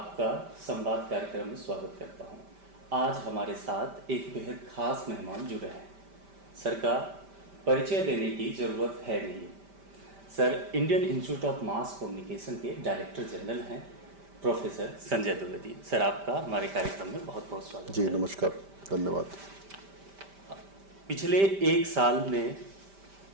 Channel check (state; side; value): late; left; 5.1 ms